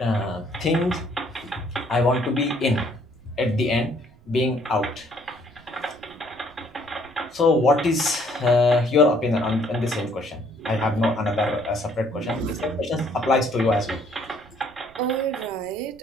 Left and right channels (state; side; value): noise; right; rumble, 26 dB below the sound